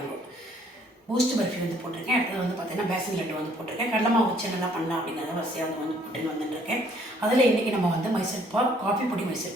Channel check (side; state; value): both; normal; correlation 0.62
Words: பூஸ்ட் பர்ஃபி வந்து போட்டிருக்கேன். அடுத்தது வந்து பார்த்திங்கன்னா பேசன் லட்டு வந்து போட்டிருக்கேன். கடலை மாவு வச்சு என்னெல்லாம் பண்ணலாம் அப்படிங்கிறத வரிசையாக வந்து போட்டுன்னு வந்துட்டுருக்கேன். அதில் இன்றைக்கி நம்ம வந்து மைசூர் பாகு, காஃபி பொடி